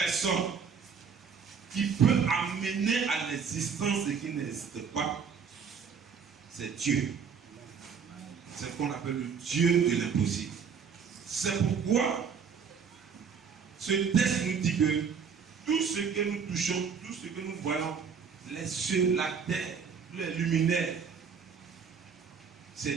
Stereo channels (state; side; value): quieter; left; 6.3 dB